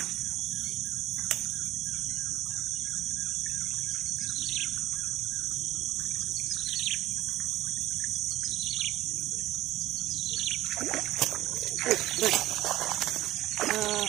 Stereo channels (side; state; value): left; quieter; 15.7 dB